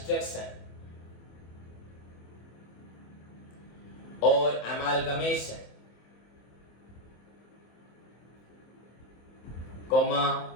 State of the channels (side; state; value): right; late; 26 ms